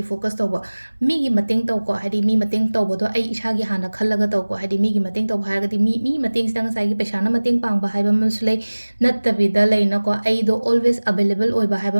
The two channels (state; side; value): inverted; both; correlation -1.00